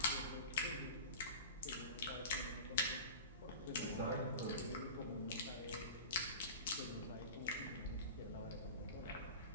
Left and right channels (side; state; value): both; inverted; correlation -0.33